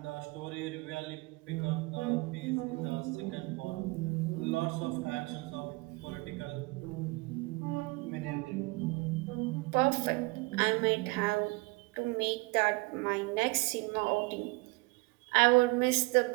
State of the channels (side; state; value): left; quieter; 25.3 dB